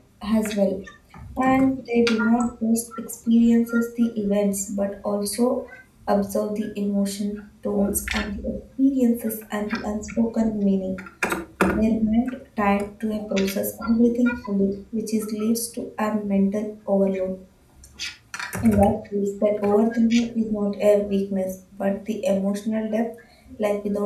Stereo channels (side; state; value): both; identical; correlation 1.00